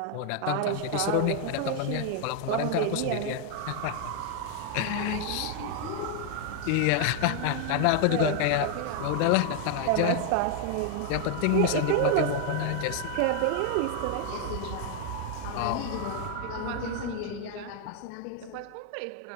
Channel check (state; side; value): different; both; correlation 0.00